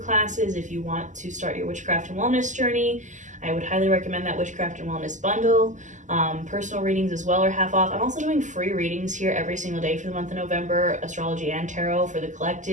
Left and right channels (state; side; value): late; left; 0.36 ms